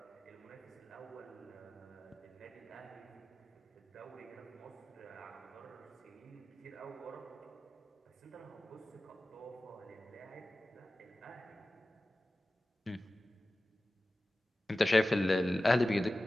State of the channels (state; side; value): normal; both; correlation 0.96